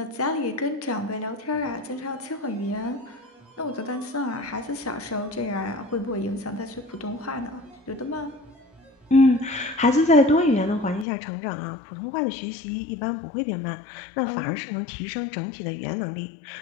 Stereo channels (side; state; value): right; drops out; at 11.1 s